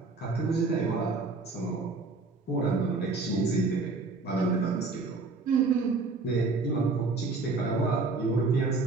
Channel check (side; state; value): left; quieter; 3.8 dB